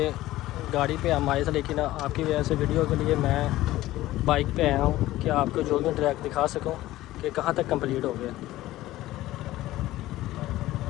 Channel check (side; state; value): right; quieter; 16.0 dB